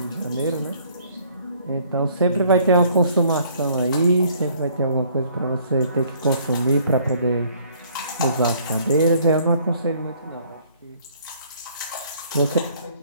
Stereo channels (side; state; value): both; inverted; correlation -0.60